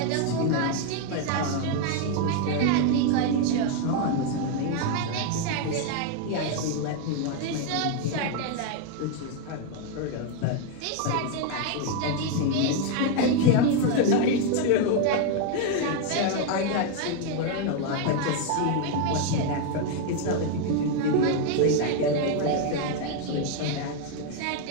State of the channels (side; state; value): both; different; correlation 0.01